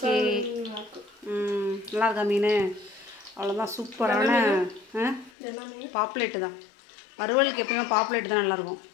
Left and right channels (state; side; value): drops out; right; at 5.3 s